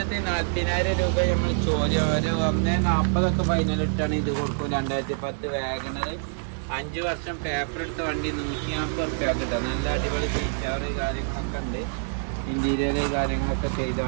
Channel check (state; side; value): silent; left; digital silence